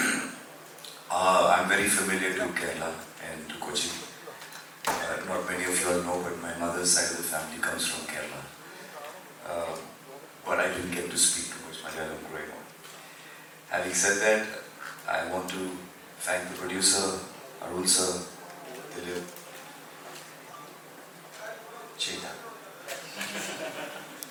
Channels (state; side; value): identical; both; correlation 1.00